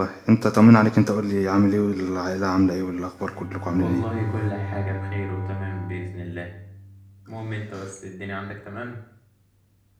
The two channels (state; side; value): identical; both; correlation 1.00